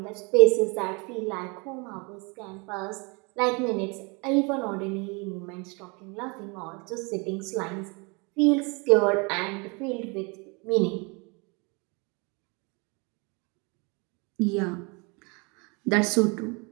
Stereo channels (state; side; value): quieter; left; 30.5 dB